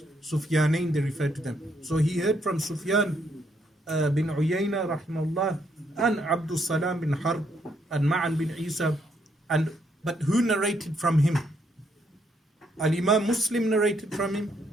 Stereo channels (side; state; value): both; normal; correlation 0.74